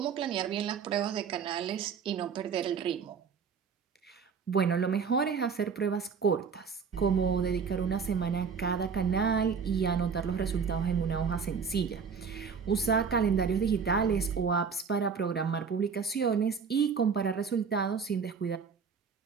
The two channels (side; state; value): left; quieter; 6.0 dB